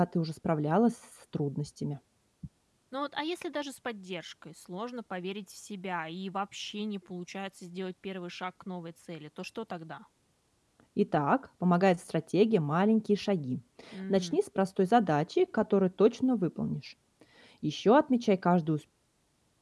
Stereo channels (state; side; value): identical; both; correlation 1.00